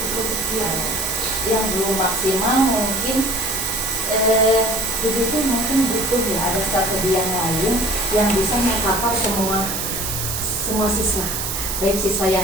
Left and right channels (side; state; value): right; noise; hiss, 3 dB below the sound